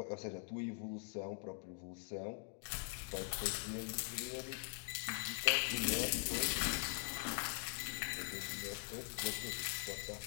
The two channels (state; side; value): quieter; right; 39.6 dB